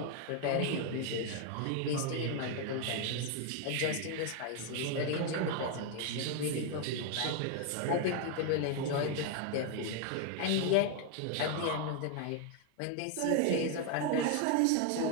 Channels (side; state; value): both; different; correlation 0.01